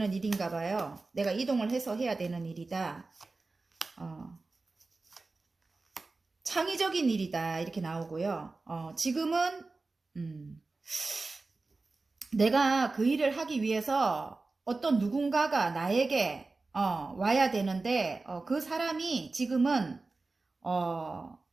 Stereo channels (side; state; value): left; quieter; 3.6 dB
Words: 일인가 봐요. 내가 이동을 해서 해야 되는 일이다. 창의적인 일이다. 이렇게 나오고요. 지금은 내가 그 일을 하기 위해서 어떤 누군가가 나에게 와야 되는데 그 사람이 지금은